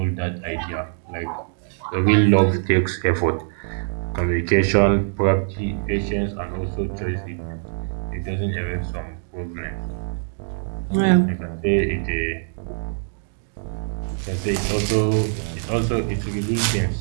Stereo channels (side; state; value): left; silent; digital silence